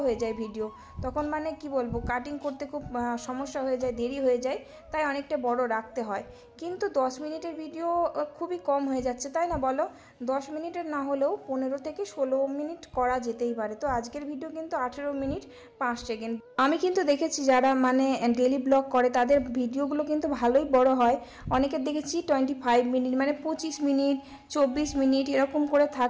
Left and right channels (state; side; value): identical; both; correlation 1.00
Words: হয়ে যায় ভিডিও, তখন মানে কি বলবো, কাটিং করতে খুব সমস্যা হয়ে যায়, দেরি হয়ে যায়, তাই অনেকটা বড় রাখতে হয়। কিন্তু 10 মিনিটের ভিডিও খুবই কম হয়ে যাচ্ছে, তাই না বলো? 10 মিনিটের না হলেও 15 থেকে 16 মিনিট করা যেতেই পারে। তো আজকের ভিডিও কিন্তু 18 মিনিট 5 সেকেন্ড। আমি কিন্তু দেখেছি যারা মানে ডেলি ব্লগ করে তাদের ভিডিওগুলো কিন্তু ভালোই বড় হয়। অনেকের দেখেছি 25 মিনিট মানে 25 মিনিট 24 মিনিট এরকম করে